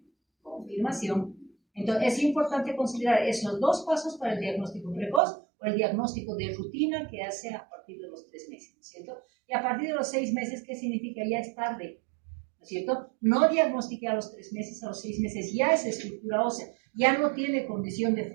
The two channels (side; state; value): left; drops out; at 5.2 s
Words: Confirmación. Entonces, es importante considerar esos dos pasos para el diagnóstico precoz o el diagnóstico de rutina que hace a partir de los 3 meses, ¿no es cierto? Y a partir de los 6 meses, ¿qué significa? Ya es tarde, ¿no es cierto? No diagnostiqué a los 3 meses, a los 6 meses ya es estructura ósea, ya no tiene condición de